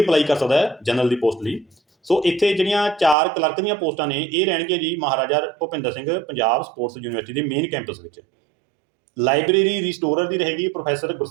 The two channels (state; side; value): drops out; left; at 3.2 s